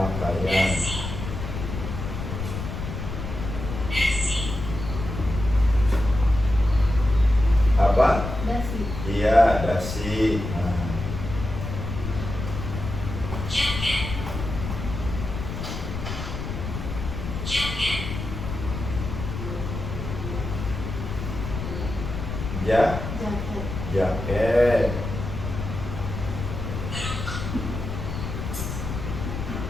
Apa? Dasi. Iya, dasi. Nah. Ja, Jaket. jaket.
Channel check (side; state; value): left; noise; rumble, 5 dB below the sound